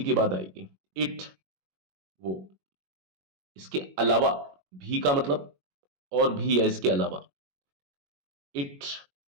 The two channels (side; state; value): left; late; 21 ms